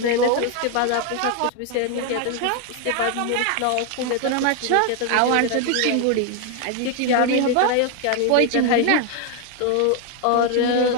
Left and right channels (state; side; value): different; both; correlation 0.01